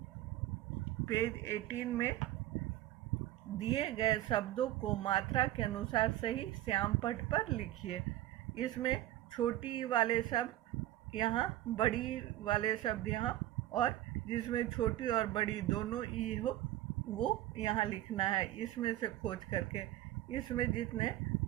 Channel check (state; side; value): quieter; left; 14.5 dB